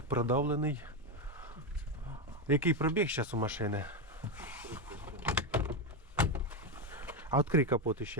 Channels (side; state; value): both; normal; correlation 0.09